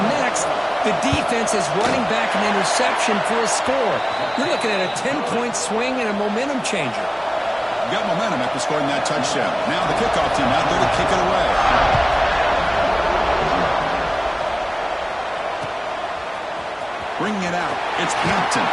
next, the defense is running back an interception for a score. You're looking at a 10-point swing and a momentum changer. You got momentum after scoring that touchdown. Now the kickoff team out there to kick it away. Bringing it out, it's Hampton.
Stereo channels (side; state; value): both; identical; correlation 1.00